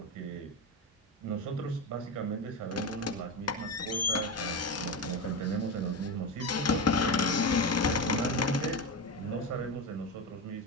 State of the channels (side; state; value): both; normal; correlation 0.18